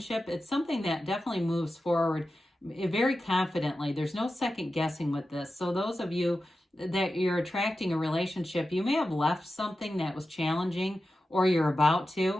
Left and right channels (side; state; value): both; normal; correlation 0.92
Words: it's something that definitely moves forward very confidently. There's no second guessing with this. So those of you that you're attracting a relationship. You may have left something that was challenging, or you're about